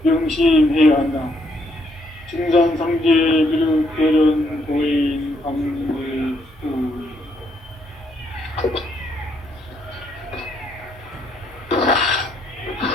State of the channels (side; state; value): both; normal; correlation 0.73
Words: 명심해야 한다. 증산상제 비륵 대련 도인 강물구